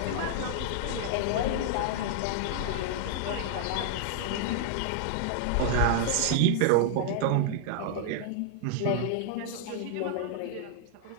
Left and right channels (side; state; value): both; different; correlation -0.01